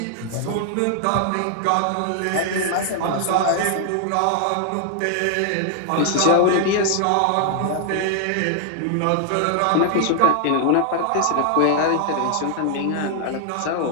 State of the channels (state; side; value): different; both; correlation 0.00